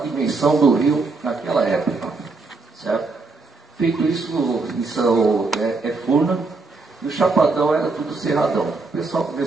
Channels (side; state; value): left; quieter; 3.8 dB